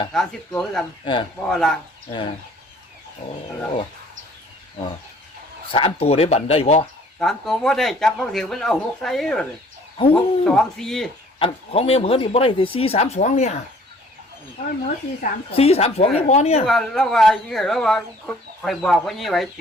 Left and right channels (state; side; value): normal; both; correlation 0.55